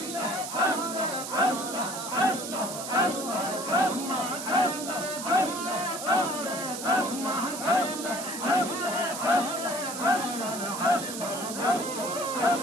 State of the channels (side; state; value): right; noise; hiss, 7 dB below the sound